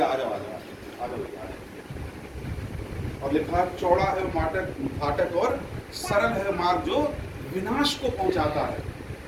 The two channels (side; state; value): both; identical; correlation 1.00